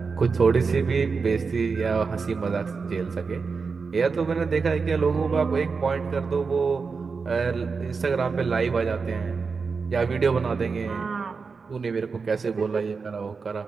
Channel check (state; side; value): quieter; left; 4.9 dB